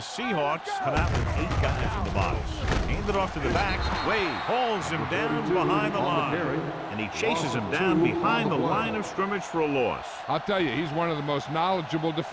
come out with 8 guys in the box. Hand it off to the back. Wade hauls him down behind the line. And he chases him down behind the line of scrimmage for a loss. I'll tell you, he's one of the most knowledgeable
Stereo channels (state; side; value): identical; both; correlation 1.00